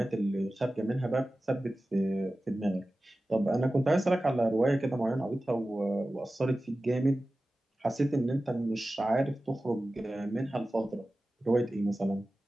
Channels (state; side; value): normal; both; correlation 0.95